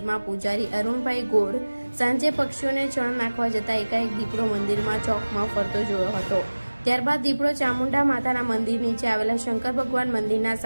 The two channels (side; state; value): both; inverted; correlation -1.00